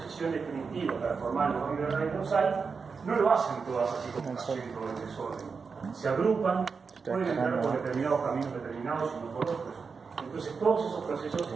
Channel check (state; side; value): quieter; left; 5.2 dB